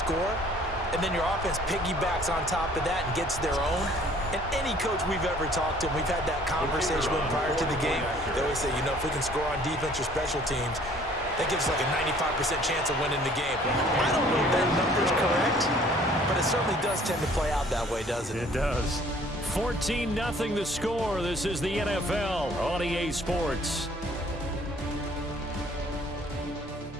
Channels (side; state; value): both; normal; correlation 0.56